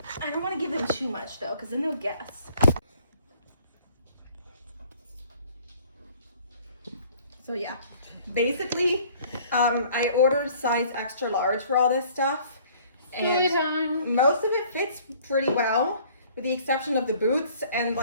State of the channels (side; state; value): both; inverted; correlation -0.55